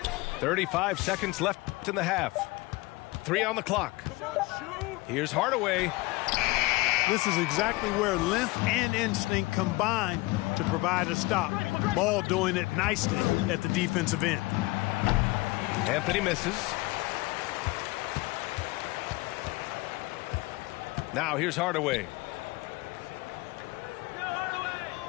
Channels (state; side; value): quieter; right; 22.2 dB